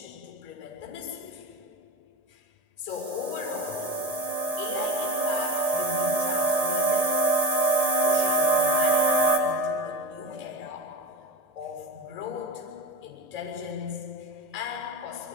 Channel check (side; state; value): left; late; 1.8 ms